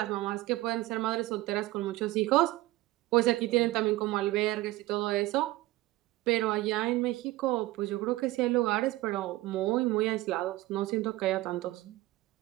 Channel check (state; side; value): quieter; left; 18.3 dB